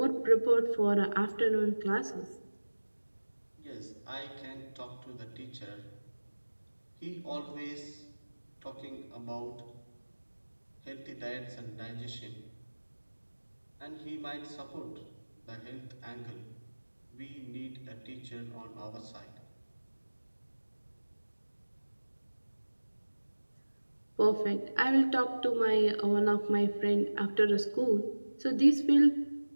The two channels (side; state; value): both; inverted; correlation -1.00